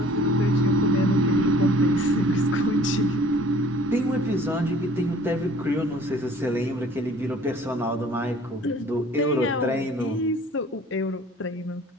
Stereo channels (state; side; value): normal; both; correlation 0.51